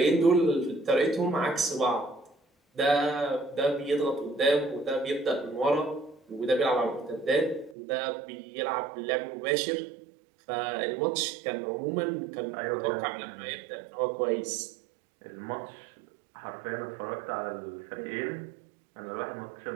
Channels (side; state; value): left; drops out; at 7.8 s